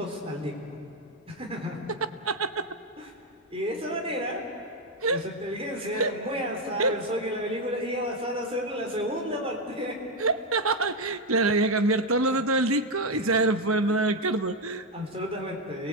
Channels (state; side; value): normal; both; correlation 0.06